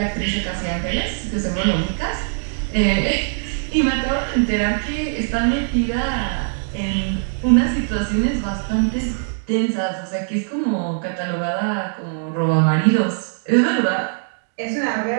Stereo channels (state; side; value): silent; left; digital silence